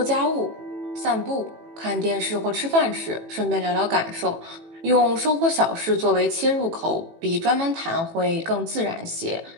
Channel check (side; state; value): left; late; 18 ms